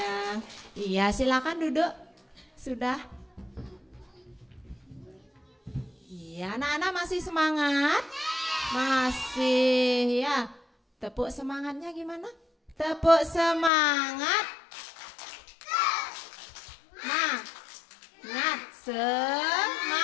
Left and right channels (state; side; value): drops out; right; at 13.7 s